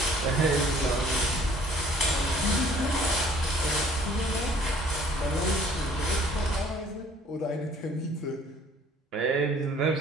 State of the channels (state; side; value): normal; both; correlation 0.56